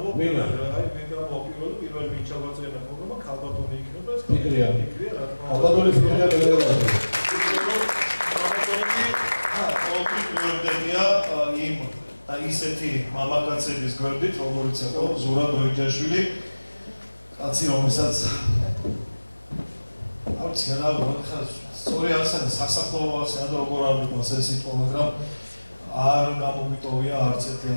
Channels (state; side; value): inverted; both; correlation -1.00